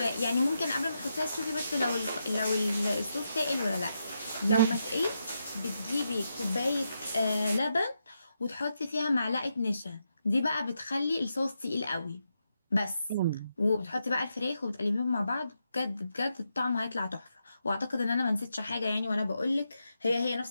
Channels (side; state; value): both; inverted; correlation -0.84